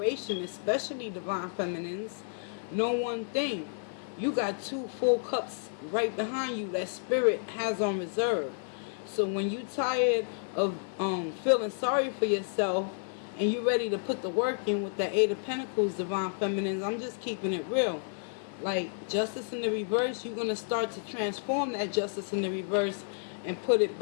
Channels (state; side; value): silent; right; 56 dB below the other